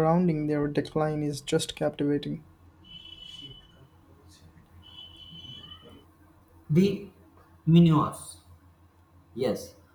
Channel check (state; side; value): identical; both; correlation 1.00